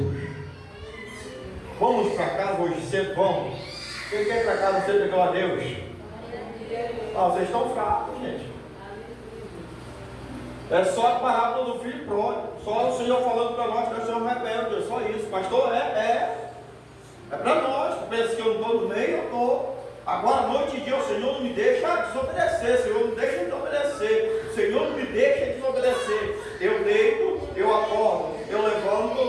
Vamos para casa hoje cedo, vamos. Quem quer ir para casa cedo, glória a Deus. Vocês estão fracos, gente. É só a parábola do filho pródigo. Só o Senhor falando para nós que nós somos rebeldes. É só isso. Pastor, é para nós. Tu pensa que eu não estou no meio? Eu estou. Agora, noite e dia, o Senhor não me deixa desobedecer. O Senhor não deixa desobedecer. O Senhor não me deixa desobedecer. Eu deito, eu acordo. Eu levanto,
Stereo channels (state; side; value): identical; both; correlation 1.00